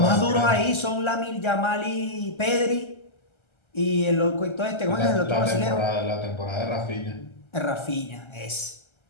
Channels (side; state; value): right; late; 1.3 ms